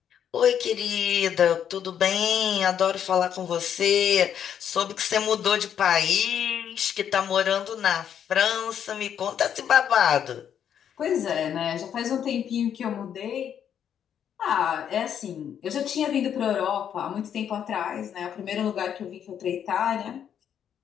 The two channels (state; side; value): quieter; right; 8.9 dB